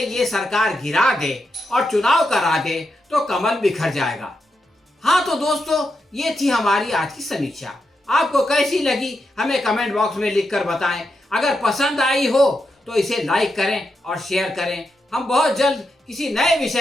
ये सरकार गिरा दे और चुनाव करा दे तो कमल बिखर जाएगा। हाँ तो दोस्तों, ये थी हमारी आज की समीक्षा। आपको कैसी लगी हमें कमेंट बॉक्स में लिखकर बताएं। अगर पसंद आई हो तो इसे लाइक करें और शेयर करें। हम बहुत जल्द किसी नए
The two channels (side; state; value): both; normal; correlation 0.85